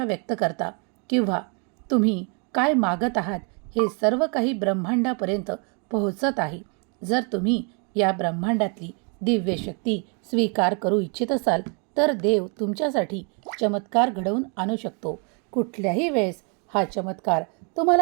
व्यक्त करता किंवा तुम्ही काय मागत आहात हे सर्व काही ब्रह्मांडापर्यंत पोहोचत आहे. जर तुम्ही या ब्रह्मांडातली दिव्य शक्ती स्वीकार करू इच्छित असाल तर देव तुमच्यासाठी चमत्कार घडवून आणू शकतो. कुठल्याही वेळेस हा चमत्कार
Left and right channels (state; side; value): quieter; left; 36.4 dB